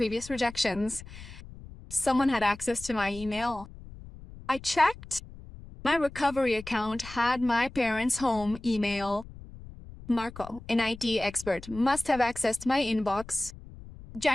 rejections? Someone had access to my email. I checked. My recovery account had my parents' home email. Marco, an IT expert, must have accessed my inbox.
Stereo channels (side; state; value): left; noise; rumble, 16 dB below the sound